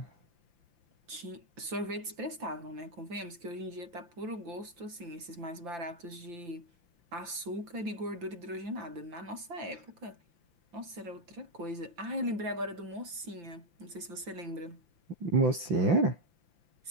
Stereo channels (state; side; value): late; left; 5.9 ms